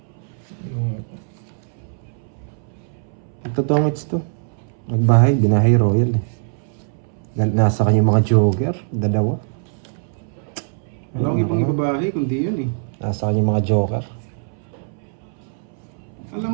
Totongits to. Magbahay, binahay royal eh. Nasa kanya mga joker. Dalawa. Wala akong ibang ibabahay kundi yun eh. Nasa kanya mga joker.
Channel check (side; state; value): left; silent; 64 dB below the other